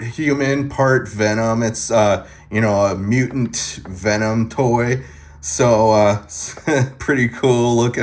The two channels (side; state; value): both; identical; correlation 1.00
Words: human, part Venom. It's you know, a mutant Venom toy. So pretty cool